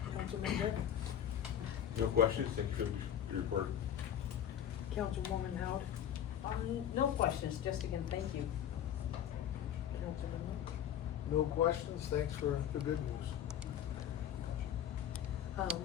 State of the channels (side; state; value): right; quieter; 9.8 dB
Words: Councilman Dick? No questions, thank you for your report. Councilwoman Howard? No questions, just again, thank you. Councilman Lynch? No questions, thanks for the good news.